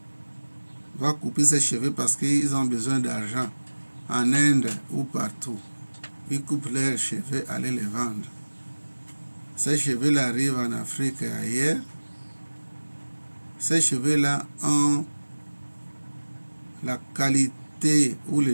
va couper ses cheveux parce qu'ils ont besoin d'argent en Inde ou partout. Ils coupent leurs cheveux, aller les vendre. Ces cheveux-là arrivent en Afrique et ailleurs. Ces cheveux-là ont la qualité ou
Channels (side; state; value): both; inverted; correlation -1.00